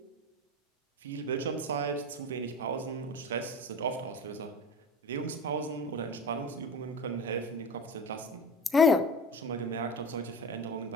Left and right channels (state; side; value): normal; both; correlation 0.32